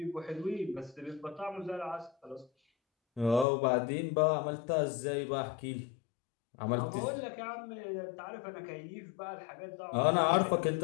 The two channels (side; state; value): right; drops out; at 3.5 s